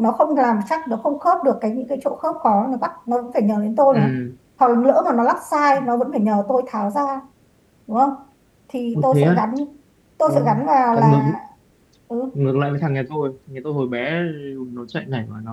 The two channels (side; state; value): both; identical; correlation 1.00